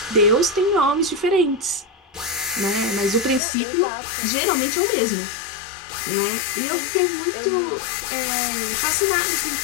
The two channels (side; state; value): right; drops out; at 3.4 s